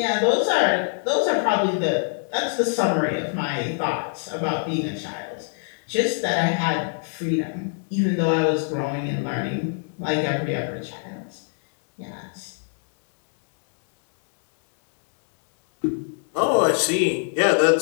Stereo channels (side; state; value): right; silent; digital silence